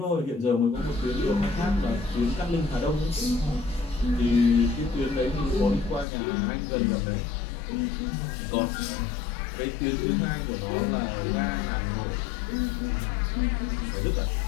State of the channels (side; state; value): right; drops out; at 6.1 s